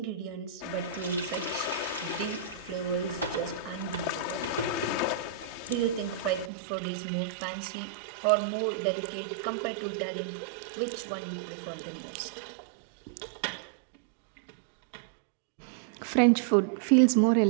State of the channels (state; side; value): drops out; left; at 6.5 s